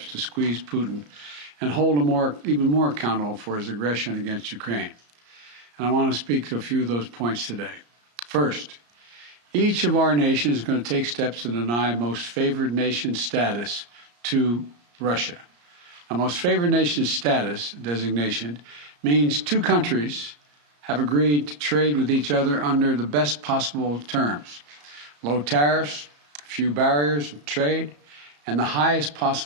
to squeeze Putin and hold him even more accountable for his aggression against Ukraine. And I want to speak to a few of those points today. First, each of our nations is going to take steps to deny most favored nation status to Russia. Now, most favored nation status designation means two countries have agreed to trade with each other under the best possible terms: low tariffs, few barriers of trade, and the highest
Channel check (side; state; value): left; late; 34 ms